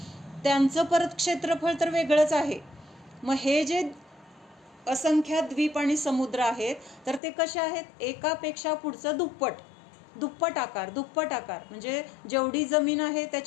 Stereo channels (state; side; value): drops out; right; at 7.2 s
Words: त्यांचं परत क्षेत्रफळ तर वेगळंच आहे. मग हे जे असंख्यात द्वीप आणि समुद्र आहेत, तर ते कसे आहेत, एकापेक्षा पुढचं दुप्पट आकार म्हणजे जेवढी जमीन आहे